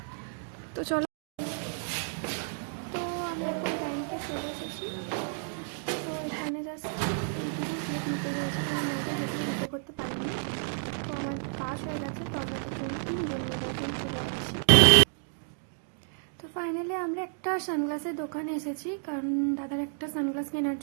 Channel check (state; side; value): silent; left; digital silence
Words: তো চলো, তো আমি এখন ব্যাংকে চলে এসেছি। তো এখানে জাস্ট এইটুকু ক্লিপ নিতে পেরেছি, কারণ ব্যাংকের ভেতরে ভিডিও করতে পারিনি। তো আমার কাজ হয়ে গেছে, তো আমরা তিনজন মিলে এখন চলে যাচ্ছি। তো ফাইনালি আমরা একটা সানগ্লাসের দোকানে এসেছি, কারণ দাদার একটা সানগ্লাস কেনার